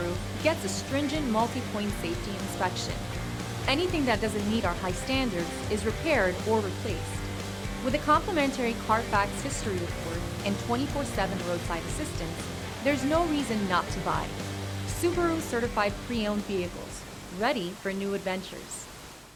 gets a stringent multi-point safety inspection. Anything that doesn't meet our high standards is repaired or replaced. With a complimentary Carfax history report and 24/7 roadside assistance, there's no reason not to buy. Subaru certified pre-owned vehicles, ready for new adventures.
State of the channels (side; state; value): both; identical; correlation 1.00